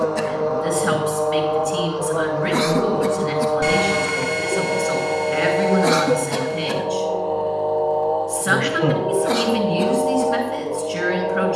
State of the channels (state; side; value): identical; both; correlation 1.00